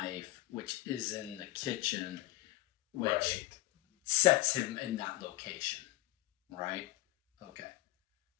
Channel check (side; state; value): right; quieter; 18.7 dB